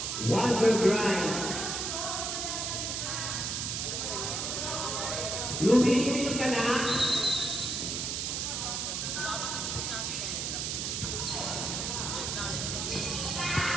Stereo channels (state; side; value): noise; right; hiss, 1 dB below the sound